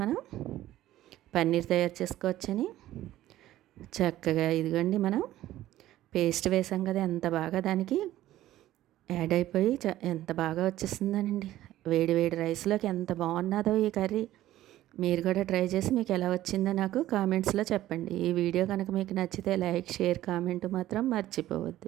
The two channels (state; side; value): quieter; left; 14.3 dB